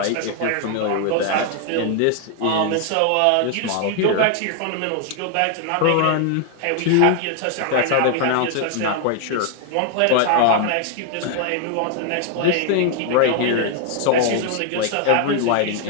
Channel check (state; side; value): different; both; correlation 0.00